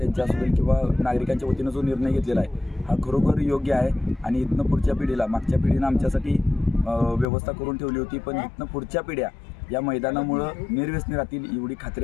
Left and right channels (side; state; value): right; drops out; at 7.2 s